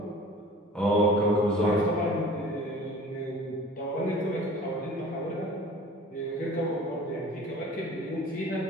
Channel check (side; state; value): both; normal; correlation 0.44